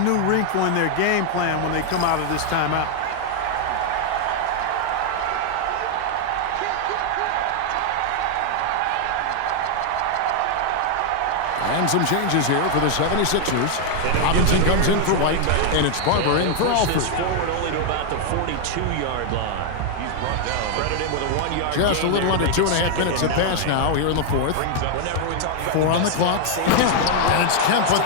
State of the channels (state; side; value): different; both; correlation 0.00